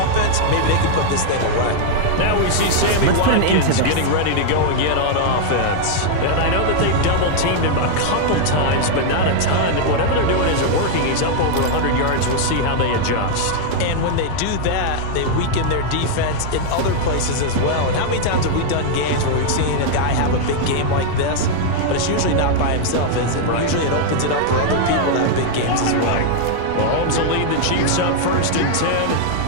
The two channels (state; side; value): different; both; correlation 0.00